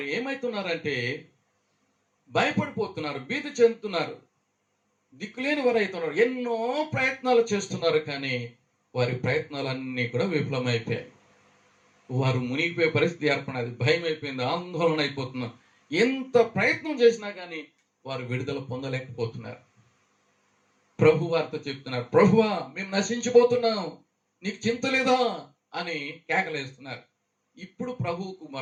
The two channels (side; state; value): both; identical; correlation 1.00